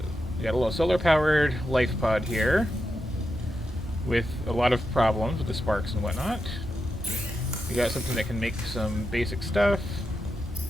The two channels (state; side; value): normal; both; correlation 0.87